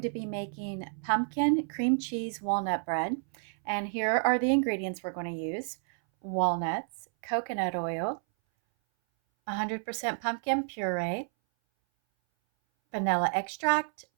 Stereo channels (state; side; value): silent; left; 58 dB below the other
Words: to be making pumpkin cream cheese walnut bread. And here are the ingredients we're going to use. Walnuts, coconut oil, 100% pumpkin puree, vanilla extract,